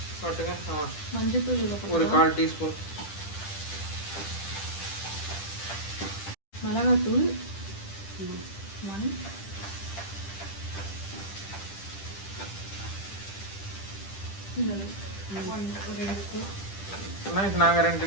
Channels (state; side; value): late; right; 10 ms